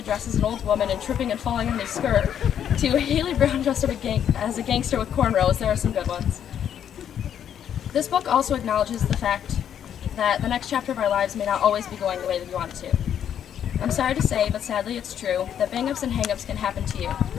dressed as an old woman and tripping and falling on his skirt, to Haley Brown dressed up as a gangster with cornrows, there are some good ones. This book also acknowledges the fact that the next chapter of our lives may not always be going the way that we want it to. I'm sorry to say, but sadly it's true, that bang-ups and hang-ups can happen to you.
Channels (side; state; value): right; quieter; 9.3 dB